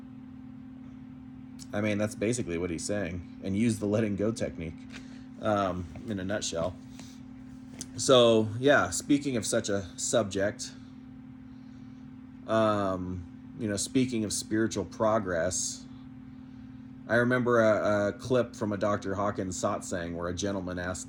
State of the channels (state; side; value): identical; both; correlation 1.00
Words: That's basically what he's saying, and use the letting go technique, in a nutshell. So, yeah, speaking of such a subject, speaking of spiritual progress, I remember a clip from a Dr. Hawkins satsang where a gentleman asked